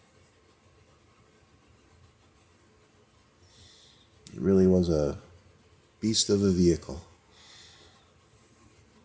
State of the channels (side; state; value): both; identical; correlation 1.00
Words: It really was a beast of a vehicle.